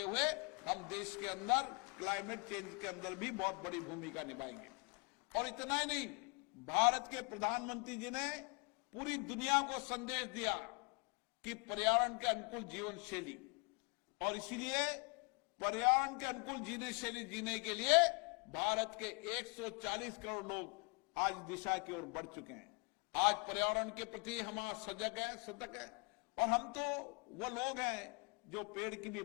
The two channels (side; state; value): right; quieter; 34.4 dB